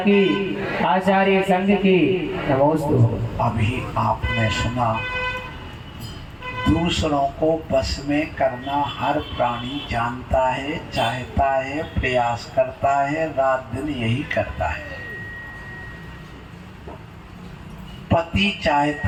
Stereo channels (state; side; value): identical; both; correlation 1.00